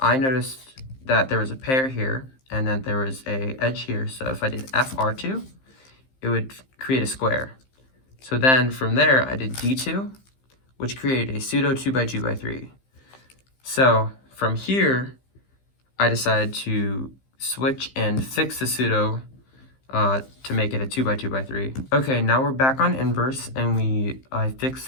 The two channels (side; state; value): right; late; 15 ms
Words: I noticed that there was a pair here, and then there was a edge here. So if I did FR2, it would create a square. So then from there, I did D2, which created a pseudo 2x2x3. So from here, I decided to switch and fix the pseudo to make it a 2x2x3. Okay, now we're back on inverse, and I fixed